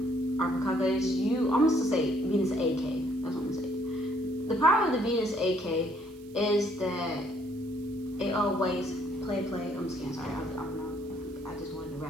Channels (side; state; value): right; noise; hiss, 27 dB below the sound